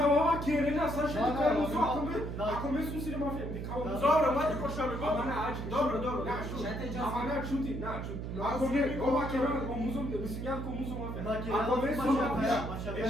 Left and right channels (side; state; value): right; noise; hum, 5 dB below the sound